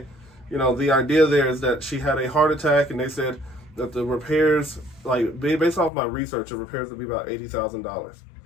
the idea there is that she had a heart attack, and they said that the repairs, like based off my research, the repairs would be about $80,000.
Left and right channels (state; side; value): drops out; right; at 5.9 s